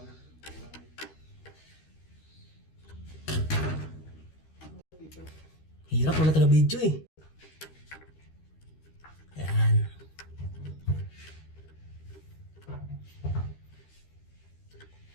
Hirap, wala taga video eh. Ayan.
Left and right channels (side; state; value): right; late; 13 ms